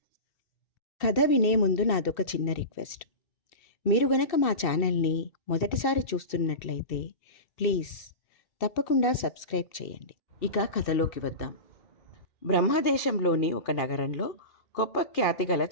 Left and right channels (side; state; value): right; late; 2.6 ms